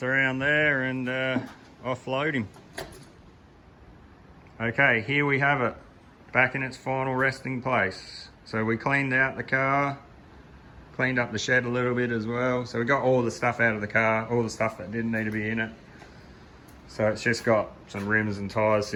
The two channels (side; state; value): both; identical; correlation 1.00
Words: around there and offload him. Okay, here we have it. Back in its final resting place. So we cleaned out the car. Cleaned up the shed a little bit as well. So we got all the stuff out of the car, all the stuff that didn't need to be in it. So it's just got some rims and tyres